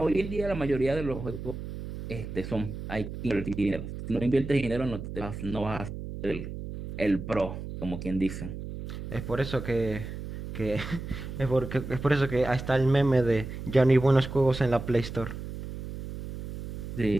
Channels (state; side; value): noise; right; hum, 8 dB below the sound